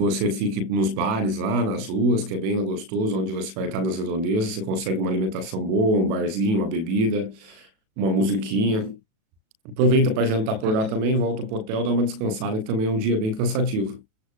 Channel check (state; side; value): late; left; 37 ms